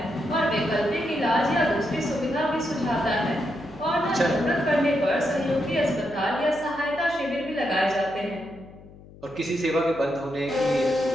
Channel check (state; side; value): noise; left; hum, 20 dB below the sound